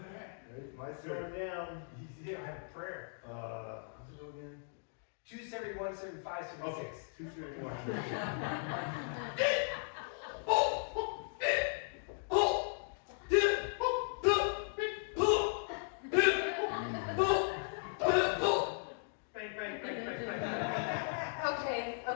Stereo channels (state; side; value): silent; right; digital silence